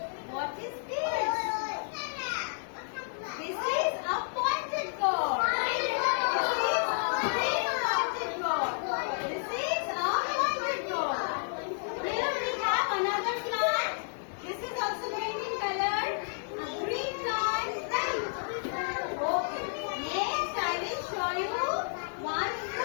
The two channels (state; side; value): silent; right; digital silence